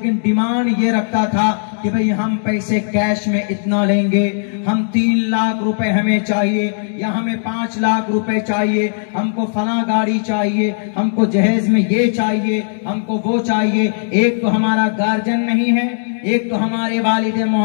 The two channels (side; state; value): right; silent; digital silence